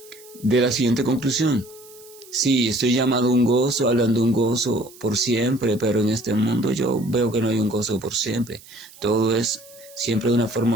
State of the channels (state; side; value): noise; right; hiss, 22 dB below the sound